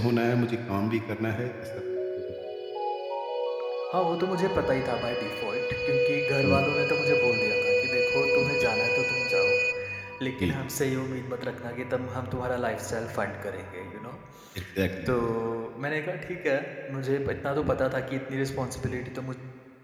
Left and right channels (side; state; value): both; identical; correlation 1.00